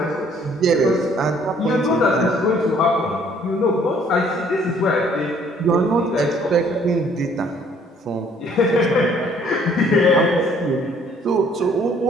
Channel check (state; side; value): normal; both; correlation 0.60